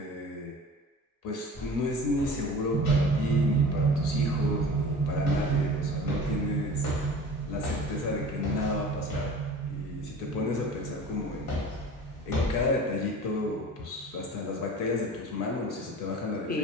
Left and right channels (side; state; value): both; normal; correlation 0.40